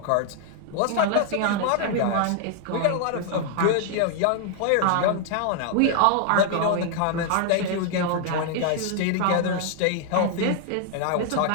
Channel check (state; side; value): different; both; correlation 0.00